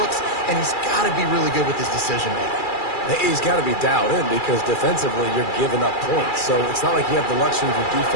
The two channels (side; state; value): right; late; 2.3 ms